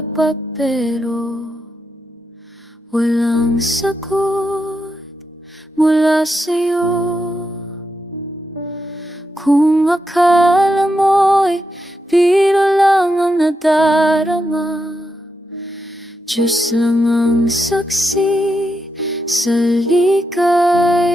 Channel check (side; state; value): both; normal; correlation 0.85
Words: pero walang sagot mula sa'yo. Kung akala mo'y biro lang ang nadarama, Diyos lang ang saksi sa